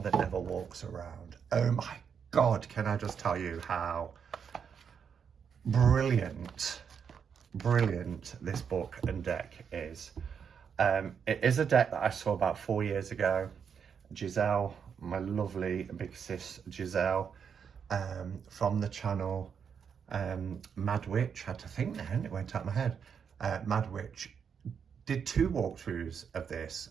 That Never Walks Around. Oh my God, can I just tell you how brilliant this book and deck is. It is a deck that I saw about 4 years ago. Giselle, my lovely big sis Giselle, from the channel Mad Witch, I had to think then, it went out of my head. Mad Witch did 2 walkthroughs of this,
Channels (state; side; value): quieter; left; 7.0 dB